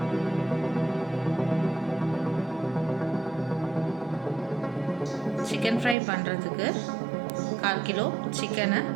சிக்கன் ஃப்ரை பண்ணுறதுக்கு 1/4 கிலோ சிக்கனை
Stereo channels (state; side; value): drops out; left; at 6.0 s